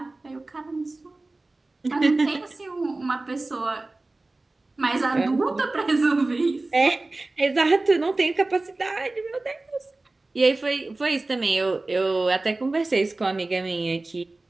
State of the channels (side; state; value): left; quieter; 3.1 dB